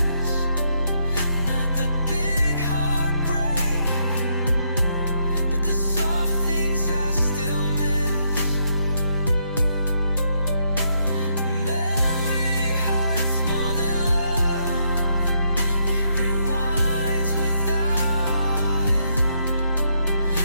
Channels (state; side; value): inverted; both; correlation -0.76